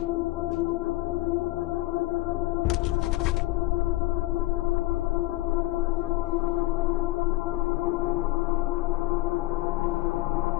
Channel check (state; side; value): quieter; right; 18.5 dB